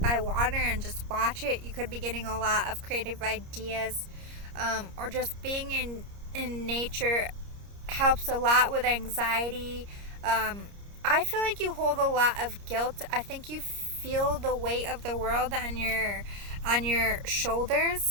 water and just watch it. You could be getting a lot of creative ideas, or just being in nature helps a lot with anxiety. I feel like you hold a lot of guilt. I think you feel the weight of the world on your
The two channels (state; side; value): late; left; 30 ms